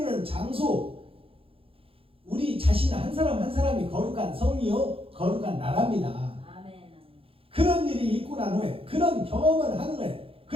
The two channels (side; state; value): left; late; 0.27 ms